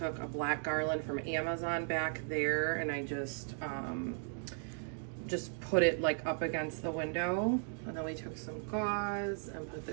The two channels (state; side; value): silent; left; 53 dB below the other